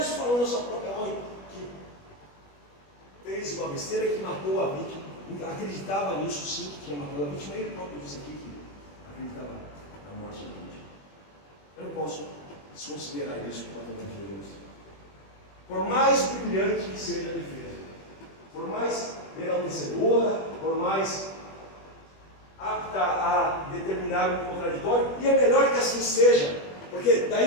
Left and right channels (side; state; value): right; late; 21 ms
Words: falando da sua própria mãe, que fez uma besteira que matou a vítima, acreditava nisso sim, que tinha matado a vítima, ele próprio disse aqui que acreditava na morte da vítima. Eu não posso desconsiderar isso por conta de Jesus. Por mais brilhante que seja a defesa, por mais enaltecedora, por mais apta a determinar um contraditório, e é melhor que assim seja, porque